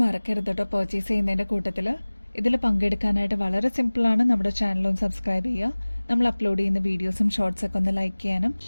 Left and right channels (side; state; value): both; inverted; correlation -1.00